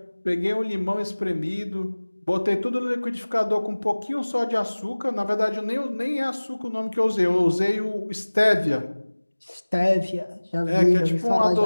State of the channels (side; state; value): both; inverted; correlation -1.00